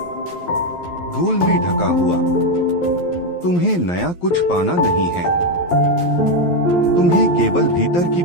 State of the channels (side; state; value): right; late; 11 ms